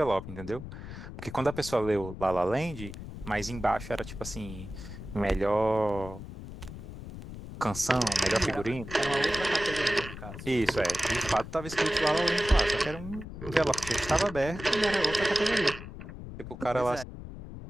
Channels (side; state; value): left; noise; rumble, 11 dB below the sound